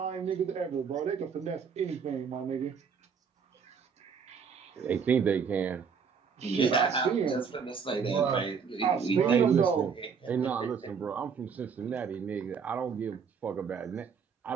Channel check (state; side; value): quieter; left; 6.3 dB